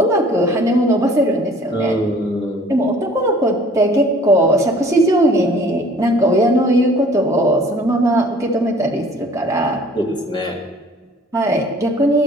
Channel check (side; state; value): both; normal; correlation 0.52